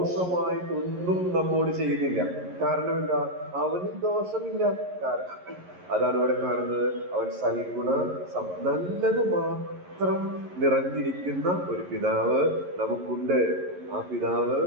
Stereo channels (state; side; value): late; left; 11 ms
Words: നമ്മോട് ചെയ്യുന്നില്ല. കാരണം എന്താ? അവന് ദോഷമില്ല. കാരണം അതാണ് ഇവിടെ കാണുന്നത്, അവൻ സൽഗുണ നല്ലത് മാത്രം നിറഞ്ഞിരിക്കുന്ന ഒരു പിതാവ് നമുക്കുണ്ട്. ആ പിതാവ്